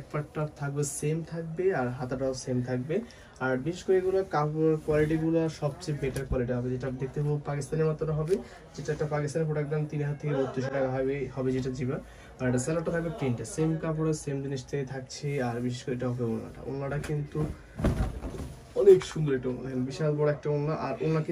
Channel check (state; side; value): identical; both; correlation 1.00